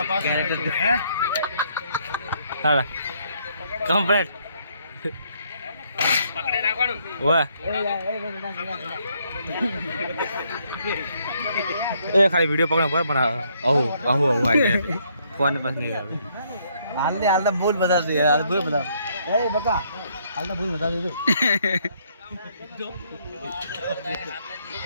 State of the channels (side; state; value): both; inverted; correlation -0.70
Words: હા કમ્પ્લીટ પકડે રાખવાનું. વાહ એ ખાલી વિડીયો પકડો પર પણ આવું આવું આવું આવી જાય ફોન પાસ નહીં આવે. હાલ તો ભૂલ બતા દે, હાલ ભૂલ બતા એ બકા, હાલ તો ભૂલ બતા દે તું.